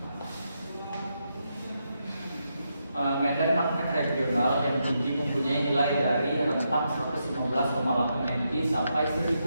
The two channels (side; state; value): both; inverted; correlation -0.83